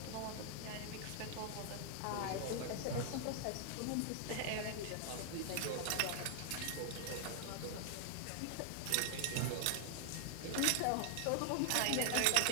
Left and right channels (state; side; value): different; both; correlation 0.00